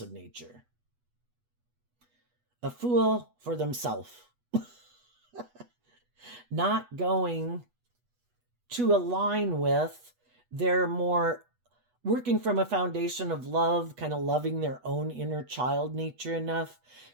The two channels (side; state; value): left; late; 8.2 ms